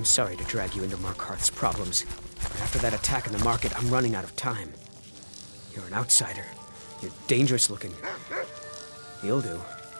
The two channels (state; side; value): inverted; both; correlation -1.00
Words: sorry to drag you into Markarth's problems, but after that attack in the market, I'm running out of time. You're an outsider. You're dangerous looking. You'll do.